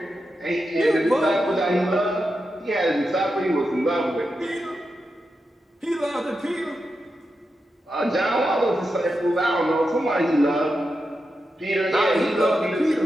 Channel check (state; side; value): normal; both; correlation 0.88